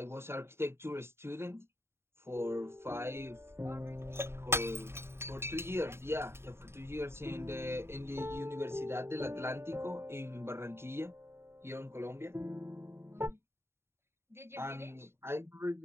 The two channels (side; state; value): left; late; 0.12 ms